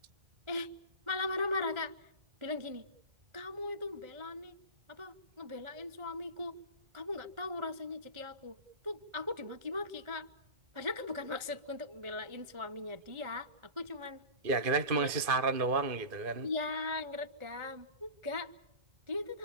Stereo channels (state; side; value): late; left; 2.5 ms